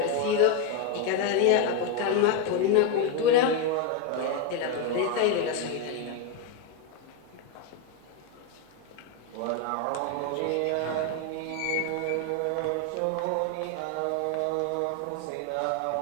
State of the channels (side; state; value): both; different; correlation 0.01